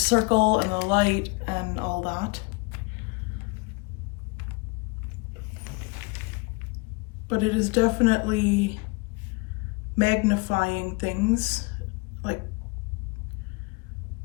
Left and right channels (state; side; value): quieter; right; 27.8 dB